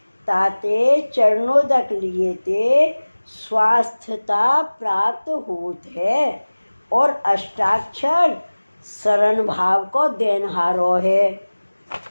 ताते चरणोदक लिए ते स्वास्थ्यता प्राप्त होत है और अष्टाक्षर शरण भाव को देनहारो है।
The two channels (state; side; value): inverted; both; correlation -1.00